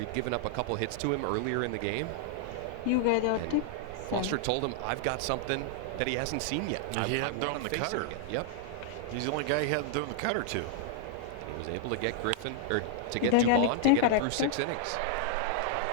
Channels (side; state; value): both; different; correlation -0.01